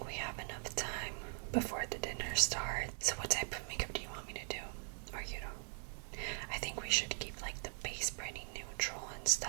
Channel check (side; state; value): left; silent; 50 dB below the other